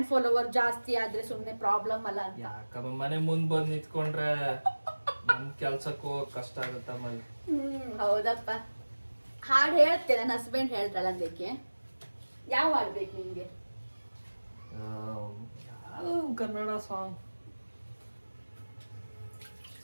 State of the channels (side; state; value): both; inverted; correlation -1.00